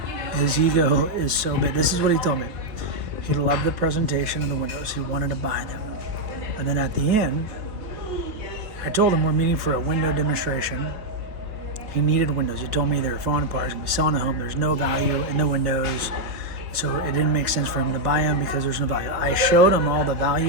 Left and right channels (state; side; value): late; left; 4.5 ms